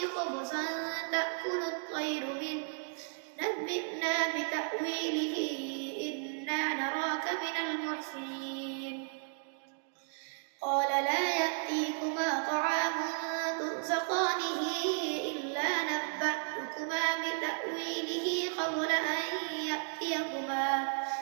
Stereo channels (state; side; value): silent; left; 55 dB below the other